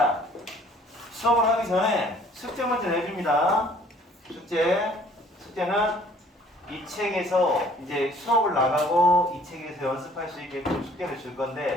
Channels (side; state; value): both; normal; correlation 0.56